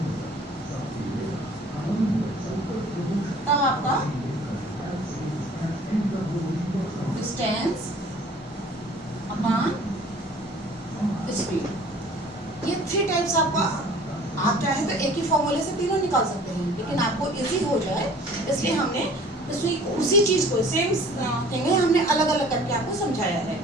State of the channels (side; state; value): both; normal; correlation 0.50